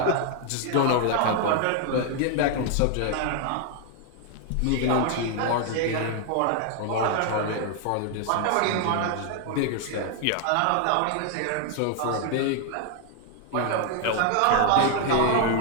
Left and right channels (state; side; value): different; both; correlation 0.00